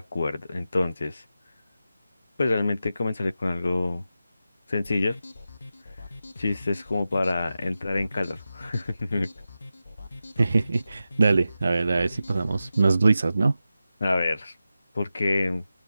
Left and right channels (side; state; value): both; inverted; correlation -0.92